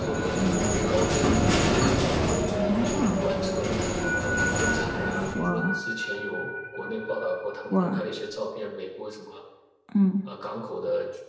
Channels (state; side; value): identical; both; correlation 1.00